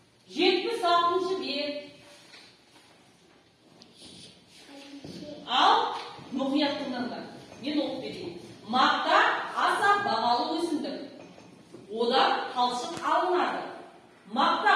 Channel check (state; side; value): identical; both; correlation 1.00